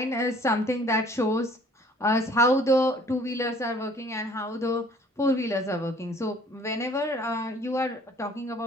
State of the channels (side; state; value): both; normal; correlation 0.55